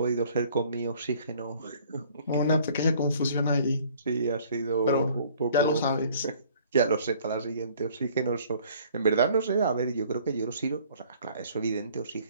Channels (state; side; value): inverted; both; correlation -0.56